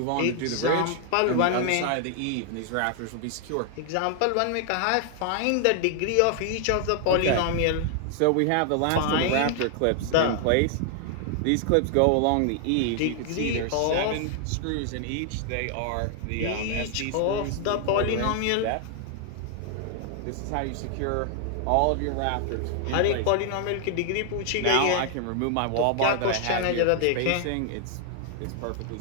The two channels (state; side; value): different; both; correlation 0.00